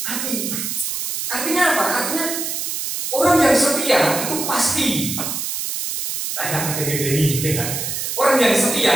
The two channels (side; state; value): right; noise; hiss, 3 dB below the sound